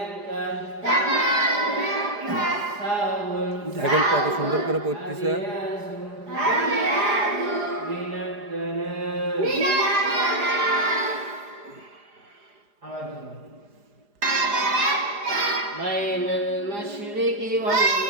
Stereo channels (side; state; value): left; late; 4.9 ms